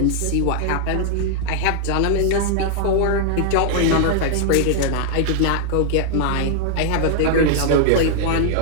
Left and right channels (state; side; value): different; both; correlation -0.01